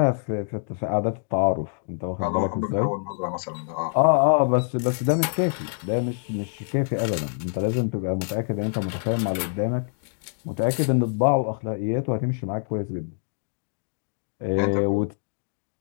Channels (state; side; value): silent; right; digital silence